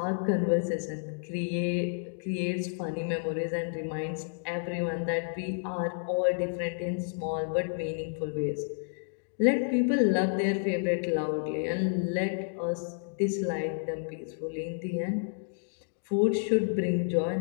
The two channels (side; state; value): right; silent; digital silence